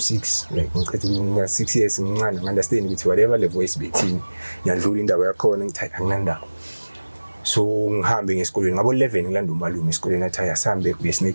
like ngicela 6 years ngincane understand ukuthi whatever le voice bethini ngiyadlula indaba yakhona ngithi anginandaba. So ngihambe ngesikolweni ngabo 11 ngilanda umalume esikolweni athi ayasambe uye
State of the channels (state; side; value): inverted; both; correlation -1.00